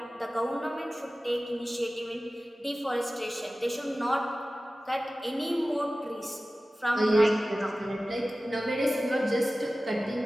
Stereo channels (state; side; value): normal; both; correlation 0.96